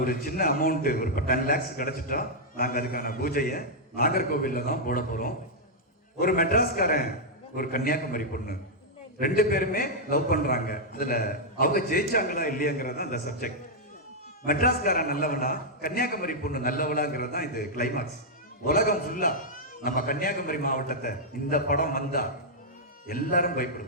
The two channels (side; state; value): both; normal; correlation -0.06